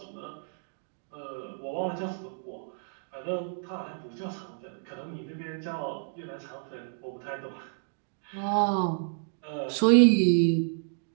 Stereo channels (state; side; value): silent; left; digital silence